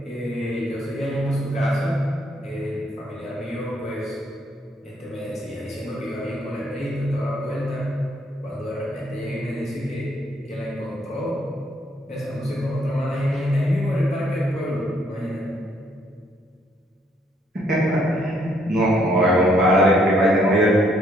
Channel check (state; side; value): normal; both; correlation 0.69